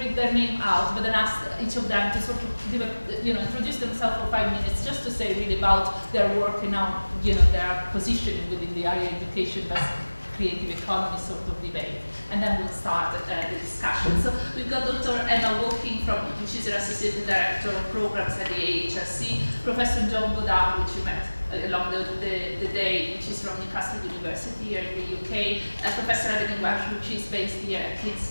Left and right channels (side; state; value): both; inverted; correlation -1.00